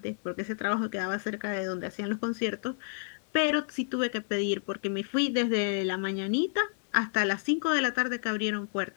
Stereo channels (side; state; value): right; silent; 58 dB below the other